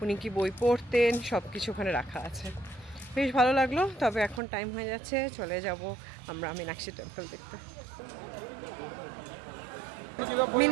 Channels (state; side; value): drops out; left; at 4.4 s